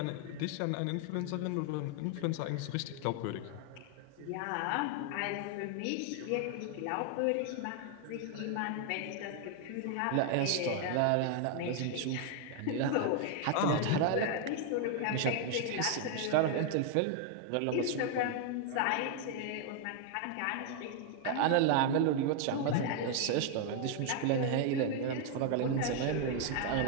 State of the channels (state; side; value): different; both; correlation 0.00